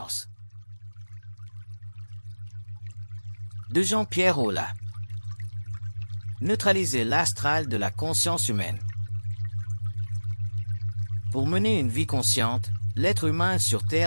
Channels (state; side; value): inverted; both; correlation -1.00